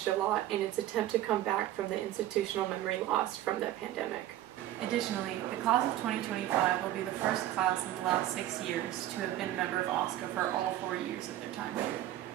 a lot in its attempt to come back from the institutional memory lost from the pandemic. Additionally, the class of 2025 will be the first class in the last 6 years to have been a member of OSCA for all 4 years of their time here.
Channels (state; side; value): quieter; left; 13.6 dB